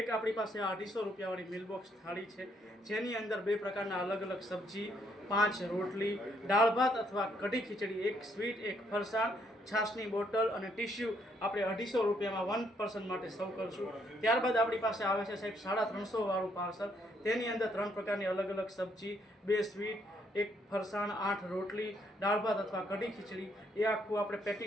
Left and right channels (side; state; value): both; normal; correlation 0.72